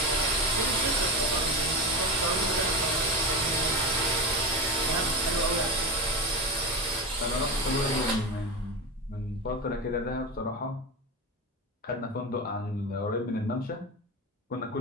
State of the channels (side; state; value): both; normal; correlation 0.22